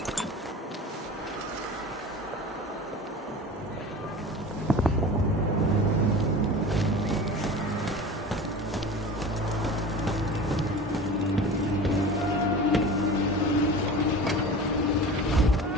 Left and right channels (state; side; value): normal; both; correlation 0.36